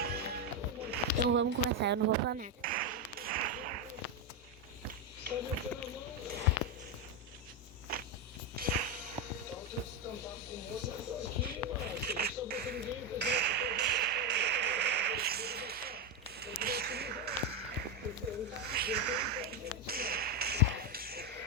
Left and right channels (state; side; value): normal; both; correlation 0.08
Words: Então vamos começar. Eu não vou falar nada.